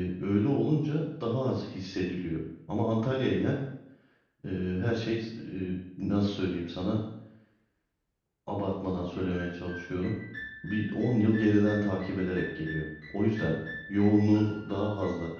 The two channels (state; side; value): identical; both; correlation 1.00